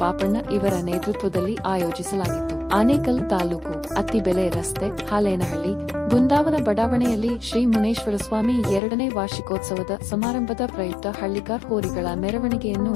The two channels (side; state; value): right; drops out; at 8.8 s